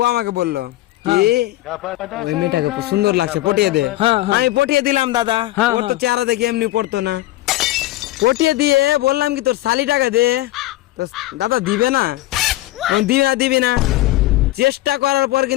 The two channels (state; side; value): quieter; right; 16.9 dB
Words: আমাকে বললো কি ওই মেয়েটাকে খুব সুন্দর লাগছে, পটিয়ে দে। হ্যাঁ, হ্যাঁ। আমি পটিয়ে দিলাম দাদা। হ্যাঁ, ওর তো হ্যাঁ। চেহারা দেখে এমনি পড়তো না। পটিয়ে দিয়ে বললাম কি তোর শালি টাকা দে, তো দাদা দিবে না। দিবি না। চেষ্টা করার পর